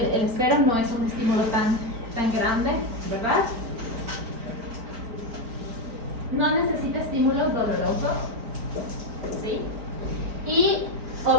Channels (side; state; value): left; late; 4.4 ms